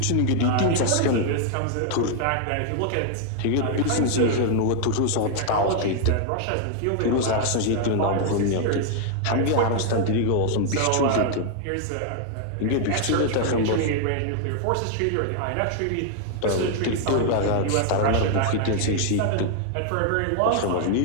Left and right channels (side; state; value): both; different; correlation 0.00